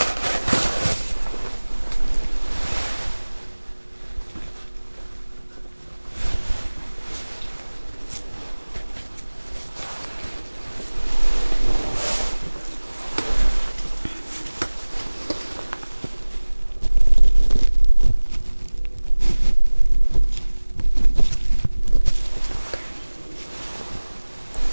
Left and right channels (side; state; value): both; inverted; correlation -1.00